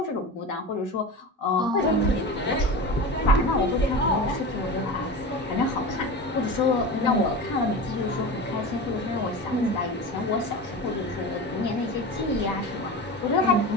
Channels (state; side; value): normal; both; correlation 0.28